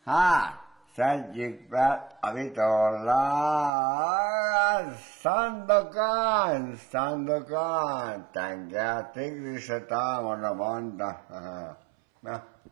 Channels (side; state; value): left; drops out; at 3.7 s